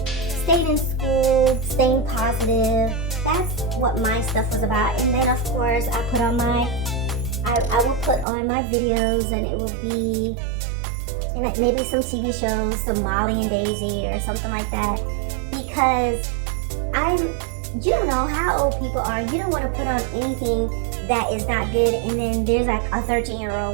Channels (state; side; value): drops out; left; at 8.2 s